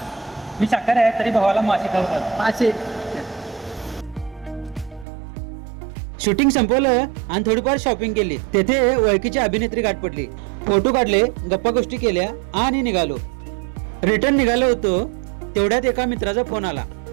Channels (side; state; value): left; drops out; at 5.1 s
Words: मी शाकाहारी आहे तरी भावाला मासे खाऊ घाल. मासे. शूटिंग संपवलं आणि थोडीफार शॉपिंग केली. तेथे ओळखीची अभिनेत्री गाठ पडली. फोटो काढले, गप्पा गोष्टी केल्या आणि निघालो. रिटर्न निघालो होतो तेवढ्यात एका मित्राचा फोन आला.